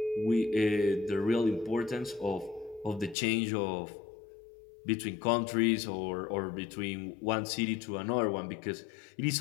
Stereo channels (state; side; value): drops out; right; at 3.2 s